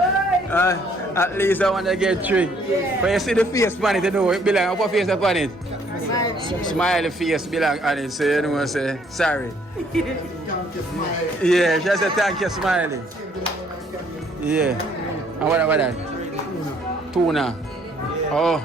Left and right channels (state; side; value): normal; both; correlation 0.64